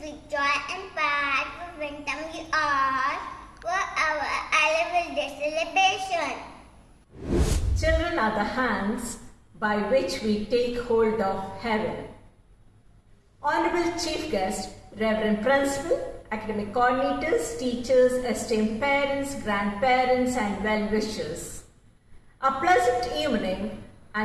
joy and pride we welcome you all for our annual day celebration. Children are the hands by which we take hold of heaven. Honorable Chief Guest, Reverend Principal, academic coordinators, teachers, esteemed parents, grandparents and well-wishers. A pleasant evening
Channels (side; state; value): both; identical; correlation 1.00